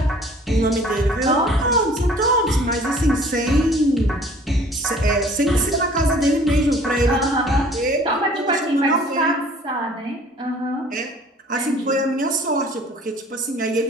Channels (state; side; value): normal; both; correlation 0.52